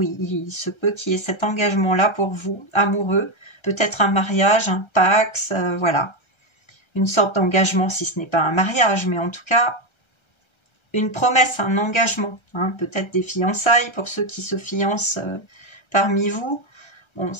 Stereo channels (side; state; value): right; late; 1.3 ms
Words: il se peut qu'il y ait cet engagement-là pour vous, amoureux, peut-être un mariage, un pax, voilà. Une sorte d'engagement, si ce n'est pas un mariage, mais en tout cas, une promesse, un engagement, hein, peut-être des fiançailles pour ceux qui se fiancent parmi vous. Bon,